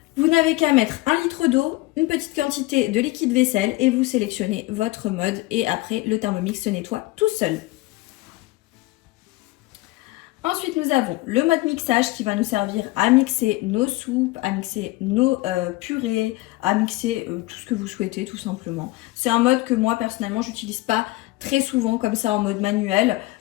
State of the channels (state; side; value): quieter; right; 19.9 dB